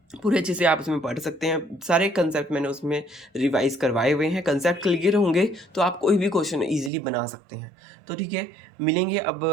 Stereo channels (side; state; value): left; drops out; at 6.9 s